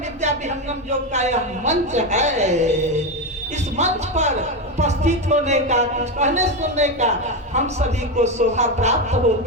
विद्या विहंगम योग का यह मंच है। इस मंच पर उपस्थित होने का, कुछ कहने सुनने का हम सभी को शोभा प्राप्त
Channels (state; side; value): normal; both; correlation 0.12